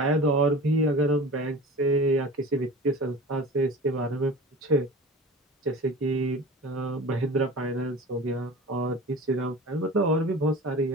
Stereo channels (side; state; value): both; normal; correlation 0.37